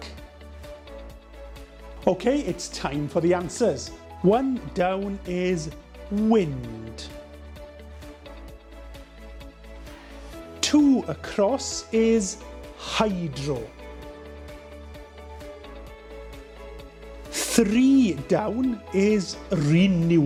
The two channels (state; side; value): identical; both; correlation 1.00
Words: Okay, it's time for the answers. 1 down is wind. 2 across is hydro. 3 down is